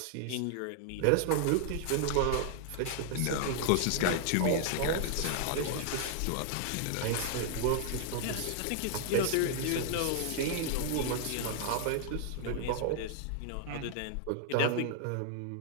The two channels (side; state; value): both; different; correlation 0.00